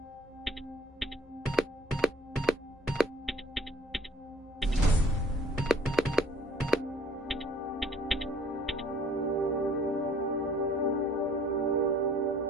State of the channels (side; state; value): both; normal; correlation 0.55